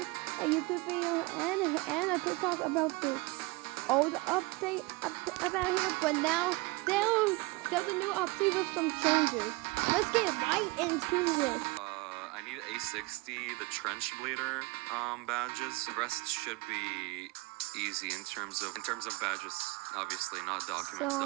a YouTube video and a TikTok about the old update about here, but now there's a new update with some changes. Let's get right into it. I need A60, the Trench Bleeder badges. The rest should be easy in terms of badges. Obviously, not documents.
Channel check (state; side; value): quieter; left; 24.5 dB